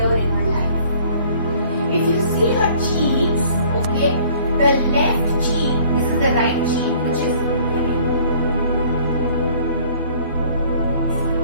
in her life. If you see her cheeks, okay, the left cheek, this is the right cheek, which is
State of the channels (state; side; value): inverted; both; correlation -0.55